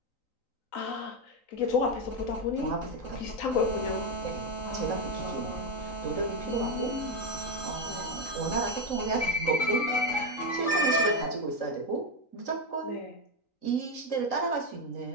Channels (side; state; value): right; late; 3.9 ms